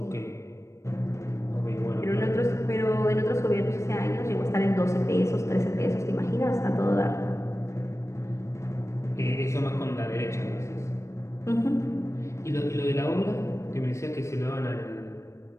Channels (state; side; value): late; right; 0.14 ms